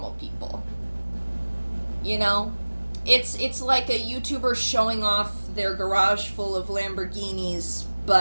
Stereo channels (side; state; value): both; inverted; correlation -1.00